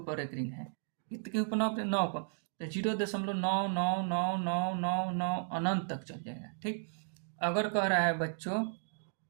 रेकरिंग है, कितने के ऊपर, 9 पर, तो 0.9999999 अनंत तक चल जाएगा। ठीक, अगर कह रहा है बच्चों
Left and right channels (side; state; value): left; silent; digital silence